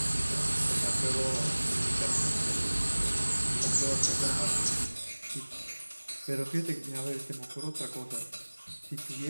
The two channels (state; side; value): inverted; both; correlation -1.00